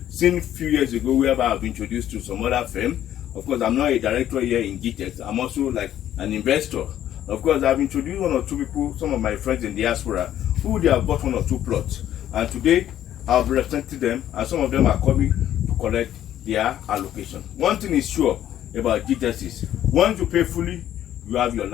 seen a few years ago whereby I've been introduced to some other firm. Of course, I'm not a director here in Gtext. I'm also like an investor. Of course, I've introduced 1 or 2 people, some of my friends in diaspora, who they have bought 1 or 2 plots. And today, I've represented them, and some of them are coming to collect their allocation. One thing is sure about Gtext is, once you pay fully, you have your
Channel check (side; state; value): right; quieter; 11.6 dB